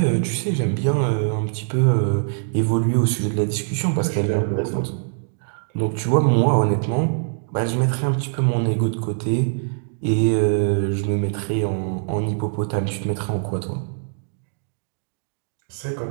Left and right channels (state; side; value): silent; left; digital silence